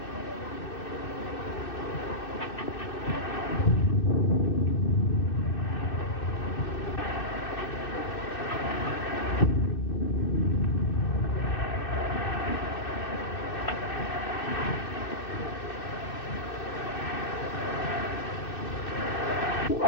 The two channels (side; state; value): right; late; 2.6 ms